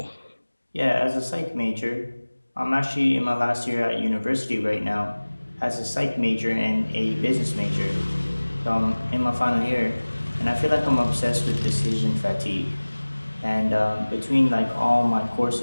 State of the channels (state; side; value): inverted; both; correlation -1.00